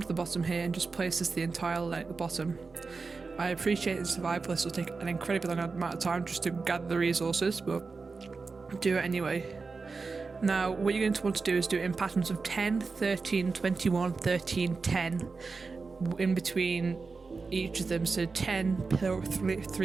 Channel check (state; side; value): quieter; left; 4.3 dB